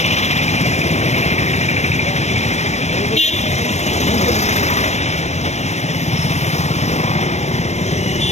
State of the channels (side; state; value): right; late; 0.32 ms